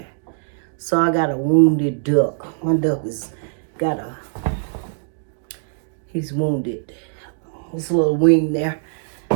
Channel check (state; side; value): silent; left; digital silence